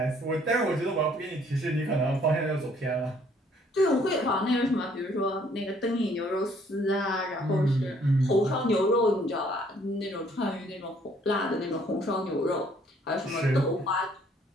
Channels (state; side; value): normal; both; correlation 0.62